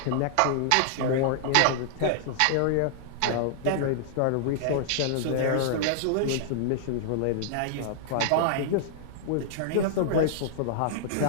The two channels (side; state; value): both; different; correlation -0.01